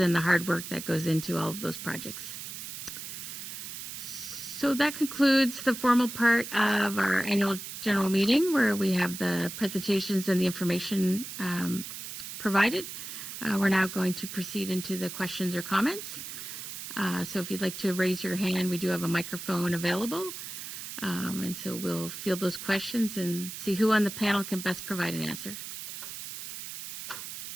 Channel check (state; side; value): noise; right; hiss, 9 dB below the sound